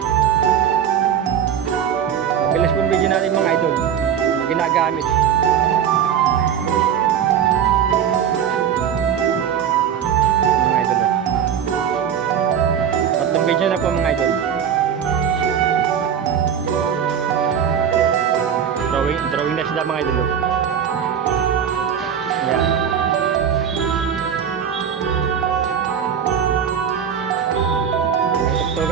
Bilis pong video natin mga idol. Ginagamit. Video na po mga idol. Drawing na sila mga idol. Yan.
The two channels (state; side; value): quieter; left; 8.5 dB